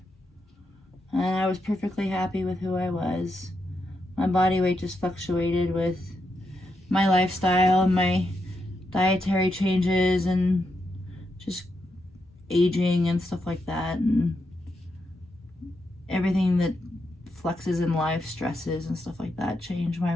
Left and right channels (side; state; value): both; normal; correlation 0.83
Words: And I was perfectly happy with who I was. My body weight just fluctuated with my lifestyle and my dietary changes and just aging and stuff like that, and everything that flexes in life, stresses and stuff like that, change